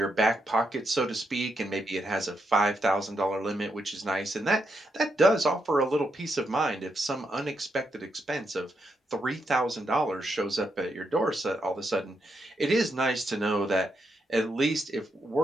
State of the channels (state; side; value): normal; both; correlation 0.81